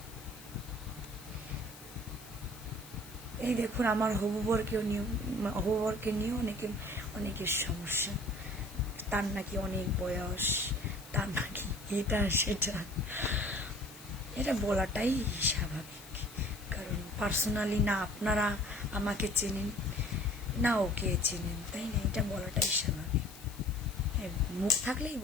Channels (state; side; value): noise; left; hiss, 18 dB below the sound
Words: এই দেখুন, আমার হবুবরকে নিয়ে অনেকের সমস্যা। তার নাকি অনেক বয়স, তার নাকি এটা সেটা, এটা বলাটাই স্বাভাবিক। কারণ পার্সোনালি না আপনারা আমাকে চেনেন, না ওকে চেনেন, তাই না? এটা বলাটাই স্বাভাবিক। মুখ থাকলেই